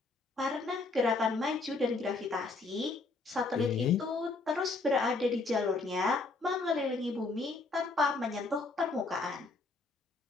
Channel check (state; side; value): quieter; right; 3.7 dB